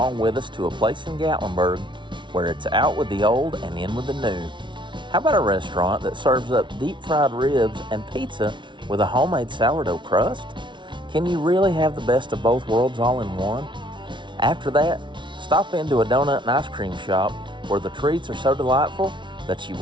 with us to a place in Gatlinburg where it's out with the old and in with the new. How about a restaurant that serves up deep fried ribs and pizza with a homemade sourdough crust? Can you really have the best of both worlds all in one? After that, stop into a donut and ice cream shop where the treats are so delightful that you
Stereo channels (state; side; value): late; left; 0.24 ms